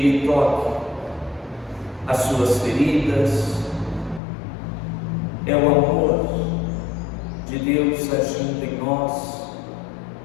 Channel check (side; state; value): right; drops out; at 4.2 s